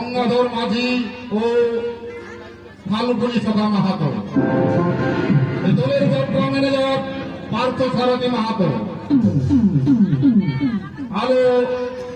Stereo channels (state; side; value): identical; both; correlation 1.00